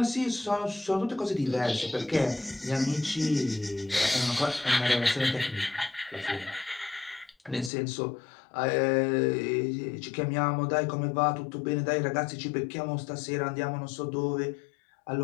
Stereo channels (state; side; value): drops out; right; at 7.7 s